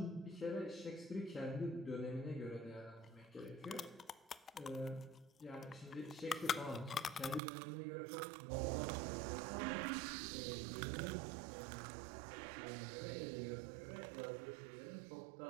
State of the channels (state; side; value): drops out; left; at 7.4 s